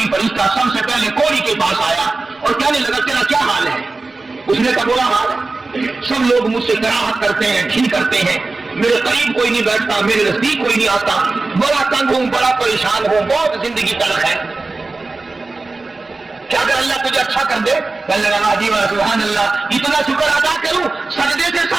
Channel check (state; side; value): quieter; left; 3.5 dB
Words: فرشتہ سب سے پہلے کوڑی کے پاس آیا اور کہنے لگا تیرا کیا حال ہے؟ اس نے کہا برا حال ہے، سب لوگ مجھ سے کراہت کرتے ہیں، ٹھیک کرتے ہیں، میرے قریب کوئی نہیں بیٹھتا، میرے نزدیک کوئی نہیں آتا، بڑا تنگ ہوں، بڑا پریشان ہوں، بہت زندگی تلخ ہے۔ کیا اگر اللہ تجھے اچھا کر دے؟ کہنے لگا جی سبحان اللہ، اتنا شکر ادا کروں، سجدے سے